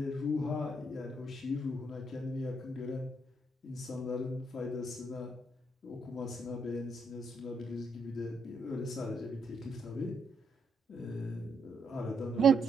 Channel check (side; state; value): both; normal; correlation 0.76